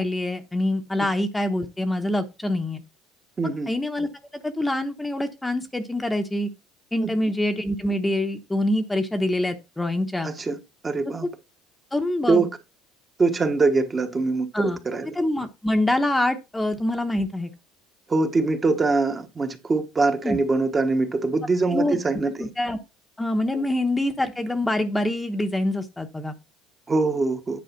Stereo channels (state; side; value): normal; both; correlation 0.87